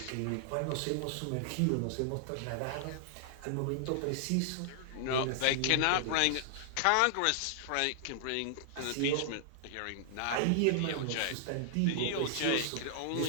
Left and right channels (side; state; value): both; different; correlation -0.01